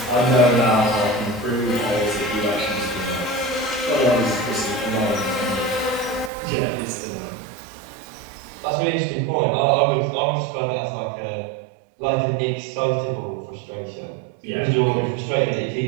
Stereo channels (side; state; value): left; drops out; at 6.3 s